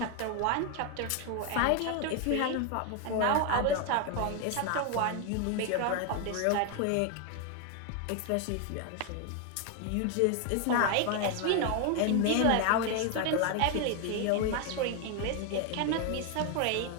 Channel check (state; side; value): different; both; correlation 0.01